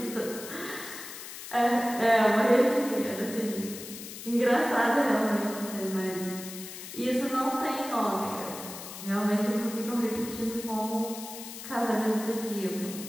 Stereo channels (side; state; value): left; noise; hiss, 11 dB below the sound